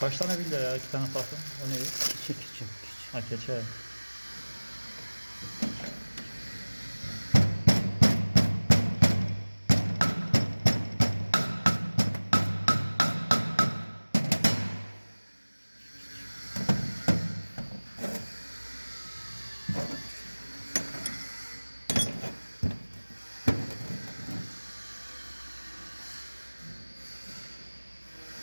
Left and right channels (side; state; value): both; inverted; correlation -1.00